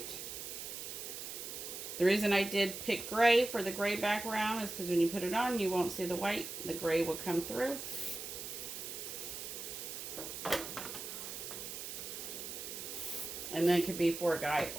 The reason I did pick gray for the gray background is because when you put it on, you won't see the white. The gray will come through. And then it could be for a guy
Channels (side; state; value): right; noise; hiss, 7 dB below the sound